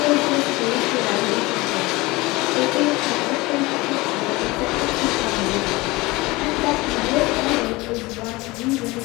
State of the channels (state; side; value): quieter; right; 22.1 dB